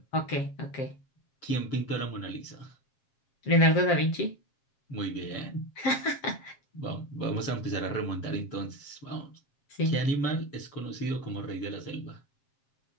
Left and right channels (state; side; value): late; right; 7.4 ms